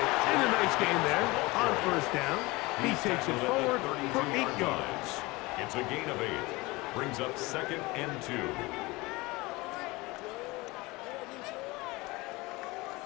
And a nice gain there on 1st down. He takes it forward for 8 yards. It's a gain of 8. Brings up 2nd and 2.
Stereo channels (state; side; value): quieter; right; 22.7 dB